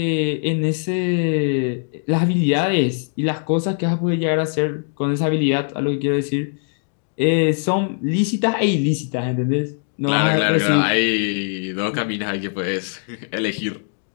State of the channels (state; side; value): silent; right; 63 dB below the other